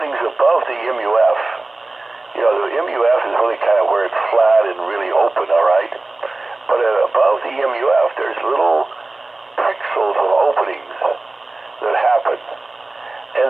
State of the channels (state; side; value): quieter; left; 3.0 dB